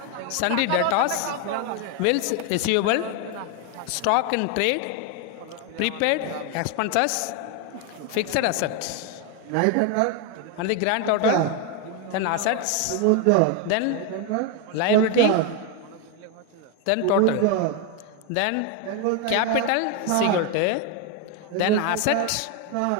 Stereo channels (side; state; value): both; different; correlation 0.01